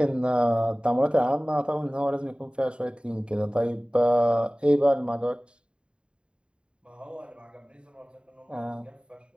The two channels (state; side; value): late; left; 0.052 ms